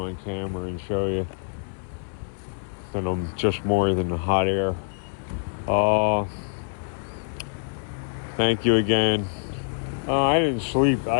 camera and show you that I'm just more than the hot air. Thank you again. I didn't sleep.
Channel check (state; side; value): silent; right; 58 dB below the other